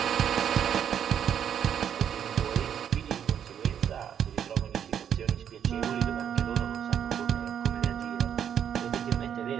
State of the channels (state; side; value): quieter; left; 8.9 dB